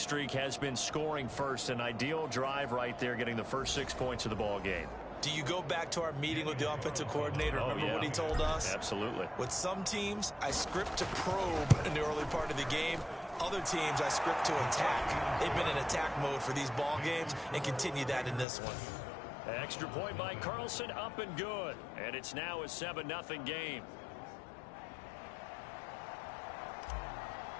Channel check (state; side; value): drops out; right; at 18.4 s